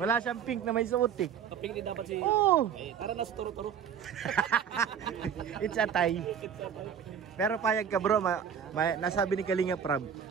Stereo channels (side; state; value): left; quieter; 8.0 dB